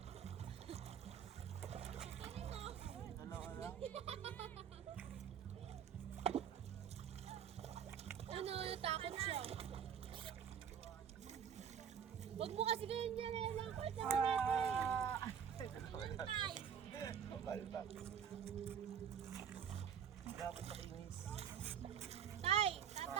Ano? Ano, natakot siya. Huwag mo kasi ganyan dyan eh. Langkot naman natin. Anong pie? Kapal ba? Dapat makinis. Tay,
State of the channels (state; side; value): quieter; left; 8.0 dB